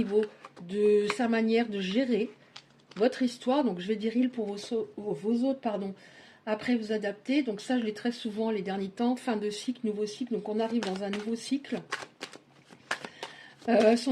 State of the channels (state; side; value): identical; both; correlation 1.00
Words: de sa manière de gérer votre histoire. Donc je vais dire il pour vos autres, pardon. Après vous adapter. Donc ça je l'ai très souvent les derniers temps. Fin de cycle, nouveau cycle. Donc on arrive dans un nouveau cycle.